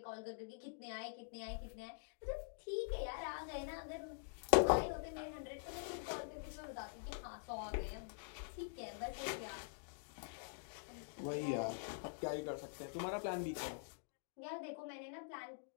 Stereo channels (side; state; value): right; silent; digital silence